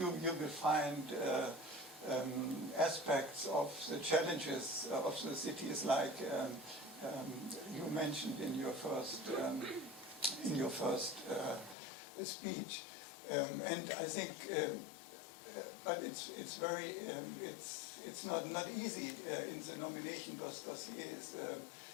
will find aspects of the challenges of the cities, like you mentioned in your first speech, and I think, but it's very it's not easy in the nomination dossiers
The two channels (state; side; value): drops out; right; at 11.8 s